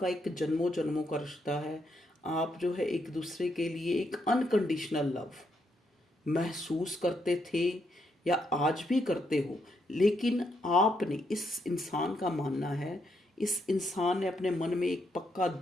एक जन्मों जन्मों का रिश्ता है, आप जो है एक दूसरे के लिए एक अनकंडीशनल लव महसूस करते थे या आज भी करते हो, लेकिन आपने, इस इंसान का मानना है, इस इंसान ने अपने मन में एक पक्का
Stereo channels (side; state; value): both; normal; correlation 0.78